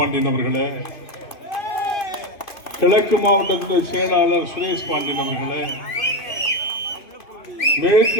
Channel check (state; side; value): late; right; 2.6 ms